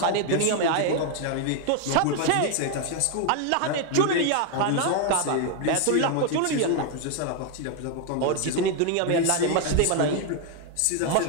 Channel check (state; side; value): different; both; correlation 0.01